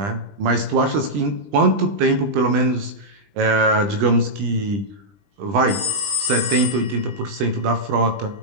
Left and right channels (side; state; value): left; late; 20 ms